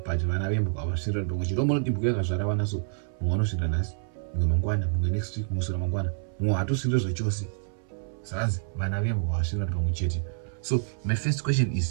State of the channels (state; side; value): silent; left; 60 dB below the other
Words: vana vembwa avasvira ndongo chirombo dibhuko yakazvara vana so mumwe anosvira nhasi mumwe mangwana mumwe next week musura mangwana mumwe hatosvira zvachose zvanzi vana vembwa avasvira ndongo chete. So my first question